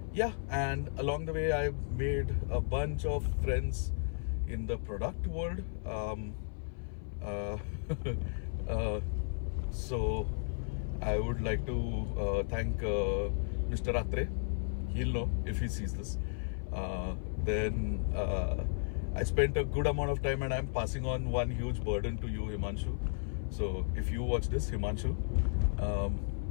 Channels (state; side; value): silent; right; 55 dB below the other